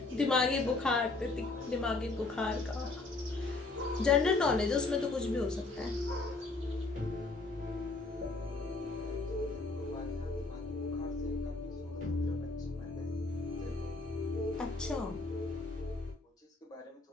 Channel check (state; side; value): quieter; right; 3.5 dB